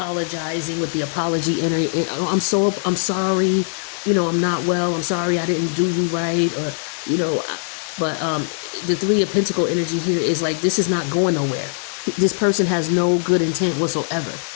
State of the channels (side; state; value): right; silent; digital silence